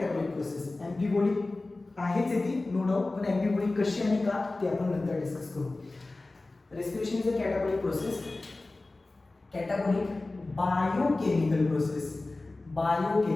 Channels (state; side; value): quieter; right; 3.1 dB